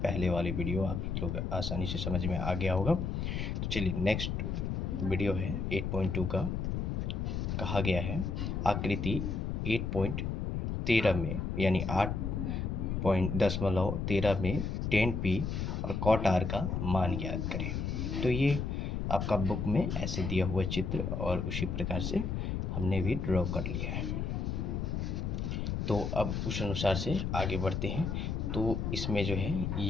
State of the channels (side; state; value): left; noise; rumble, 1 dB below the sound